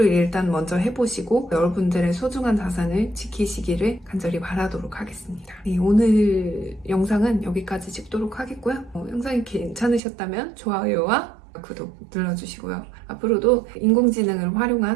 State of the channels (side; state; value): left; drops out; at 10.0 s